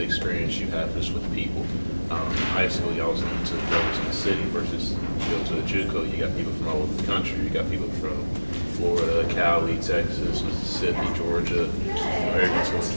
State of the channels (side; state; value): both; inverted; correlation -1.00